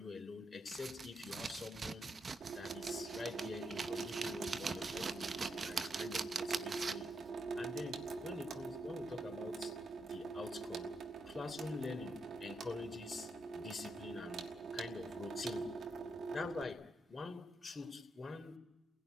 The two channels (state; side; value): normal; both; correlation 0.82